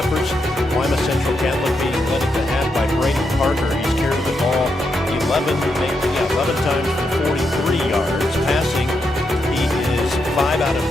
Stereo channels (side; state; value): both; normal; correlation 0.82